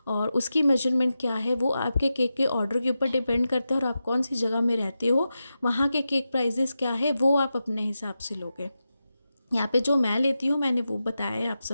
और उसकी मेजरमेंट क्या है वो आपके केक के ऑर्डर के ऊपर डिपेंड करता है, और आप कौन सी जगह में रहते हो वहाँ के केक प्राइजेस क्या है वो आप अपने हिसाब से लोगे। यहाँ पे जो मैं लेती हूँ मैंने वो बताया है आप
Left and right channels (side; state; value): both; inverted; correlation -0.91